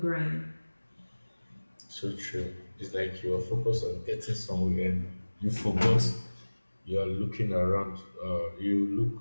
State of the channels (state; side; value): inverted; both; correlation -1.00